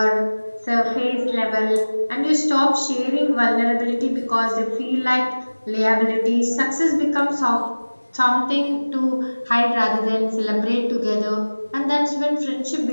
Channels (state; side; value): inverted; both; correlation -1.00